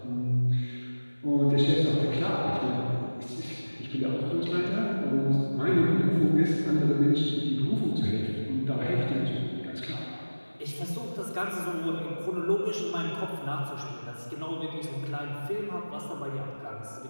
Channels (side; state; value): both; inverted; correlation -1.00